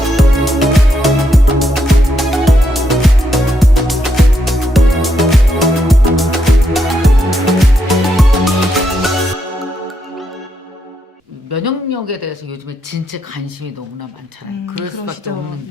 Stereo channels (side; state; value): both; normal; correlation 0.79